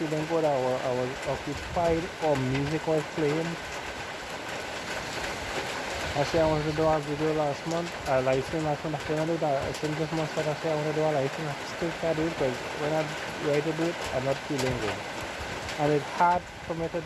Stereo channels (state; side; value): identical; both; correlation 1.00